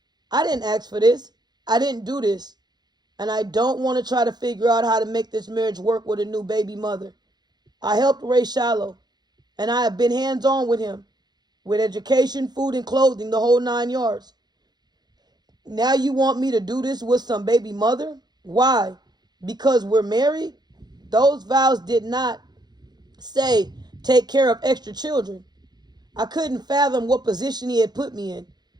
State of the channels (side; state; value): left; late; 0.20 ms